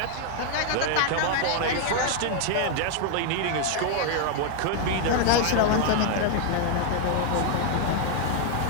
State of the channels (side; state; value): both; different; correlation 0.00